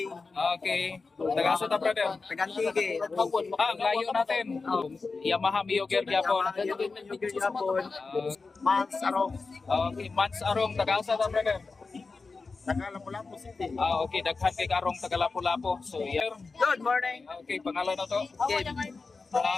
Okay. Taga-asa ta, brother? Tagantige. Ang layo natin. Yamaha Mio Gear gyapon. Mans Arong. Okay, Mans Arong, taga-asa ta, brother? Taga Lapu-Lapu City. Okay, daghan kay Karong taga Lapu-Lapu. So, yeah. Good morning. Okay, pangalan na to?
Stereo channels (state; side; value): quieter; right; 4.2 dB